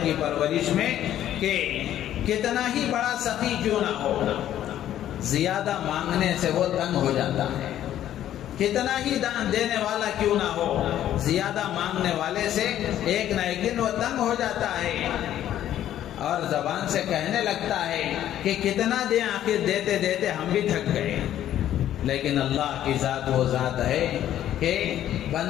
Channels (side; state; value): right; quieter; 11.7 dB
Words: کی پرورش میں کہ کتنا ہی بڑا سخی کیوں نہ ہو، زیادہ مانگنے سے وہ تنگ ہو جاتا ہے، کتنا ہی دان دینے والا کیوں نہ ہو، زیادہ مانگنے والے سے ایک نہ ایک دن وہ تنگ ہو جاتا ہے اور زبان سے کہنے لگتا ہے کہ کتنا دیں، آخر دیتے دیتے ہم بھی تھک گئے۔ لیکن اللہ کی ذات وہ ذات ہے کہ